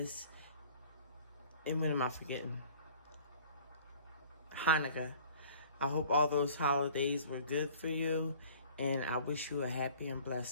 and what am I forgetting? Hanukkah. I hope all those holidays were good for you, and I wish you a happy and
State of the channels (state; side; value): inverted; both; correlation -0.50